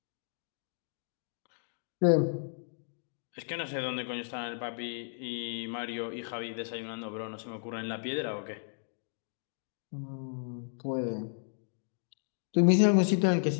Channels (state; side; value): silent; right; digital silence